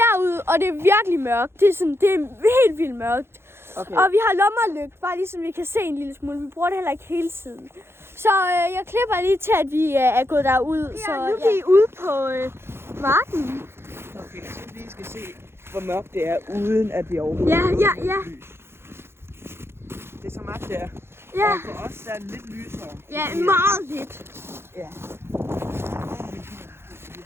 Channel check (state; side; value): late; left; 0.12 ms